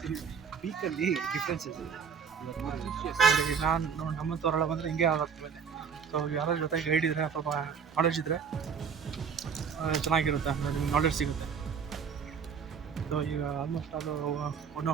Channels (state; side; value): quieter; left; 6.6 dB